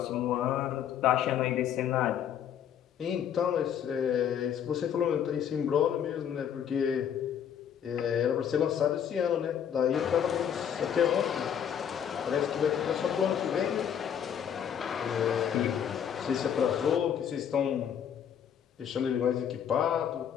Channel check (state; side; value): quieter; right; 8.8 dB